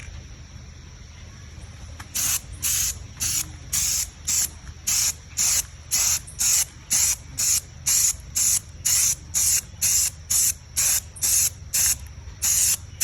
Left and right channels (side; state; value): both; identical; correlation 1.00